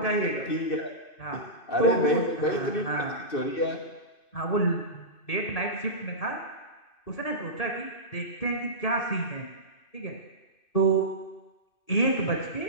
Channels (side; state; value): right; late; 2.6 ms